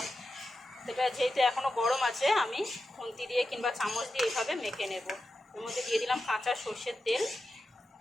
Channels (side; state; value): both; normal; correlation 0.90